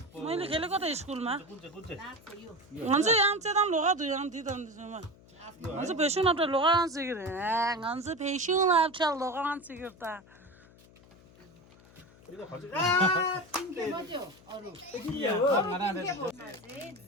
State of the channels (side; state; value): left; noise; hum, 25 dB below the sound